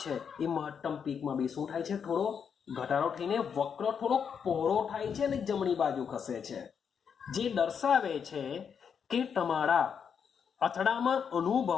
છે એ મહત્તમ પીકમાં બી શું થાય છે થોડો ઘટાડો થઈને વક્ર થોડો પહોળો થાય છે અને જમણી બાજુ ખસે છે જે દર્શાવે છે કે તમારા અથડામણ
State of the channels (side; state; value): right; quieter; 7.0 dB